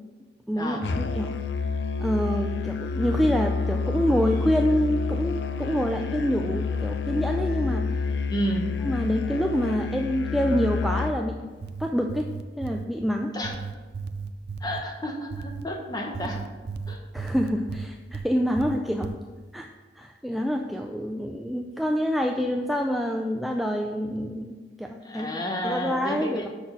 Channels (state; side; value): normal; both; correlation 0.84